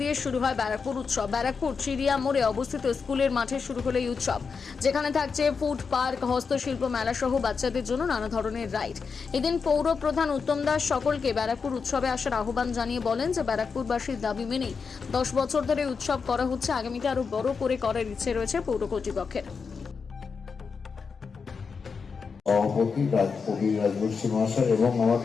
দিয়ে শুরু হয় ব্যারাকপুর উৎসব। ব্যারাকপুর চিড়িয়া মোড়ে অবস্থিত স্কুলের মাঠে শুরু হলো এই উৎসব, যেখানে থাকছে ফুড পার্ক, হস্তশিল্প মেলা সহ বাচ্চাদের জন্য নানা ধরনের রাইড। এদিন পৌর প্রধান উত্তম দাস সকলকে ব্যারাকপুর উৎসবে আসার আহ্বান জানিয়ে বলেন যে ব্যারাকপুরবাসীর দাবি মেনেই 10 বছর ধরে উৎসব করা হচ্ছে। আগামীতে আরো বড় করে করার ইচ্ছে রয়েছে পৌর কর্তৃপক্ষের। সভাপতি রাজবংশী মহাশয় এবং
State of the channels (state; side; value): quieter; right; 5.4 dB